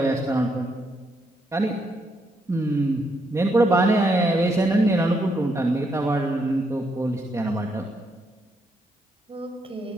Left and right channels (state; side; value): normal; both; correlation 0.77